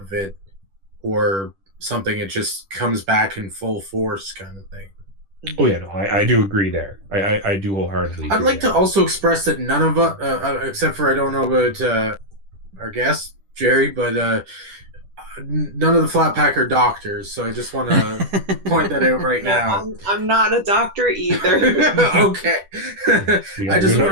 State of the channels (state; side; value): late; left; 10 ms